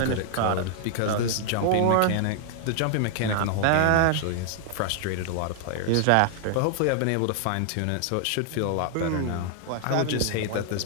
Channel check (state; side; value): different; both; correlation 0.00